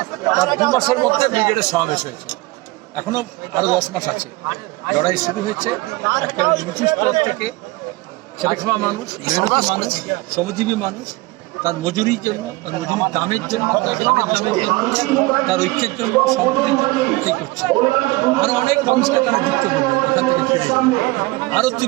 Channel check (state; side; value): quieter; left; 21.7 dB